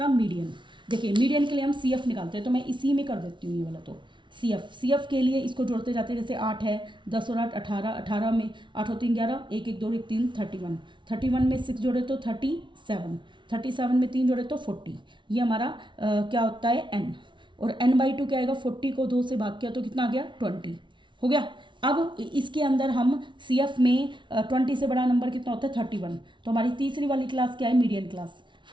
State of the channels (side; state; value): left; late; 0.24 ms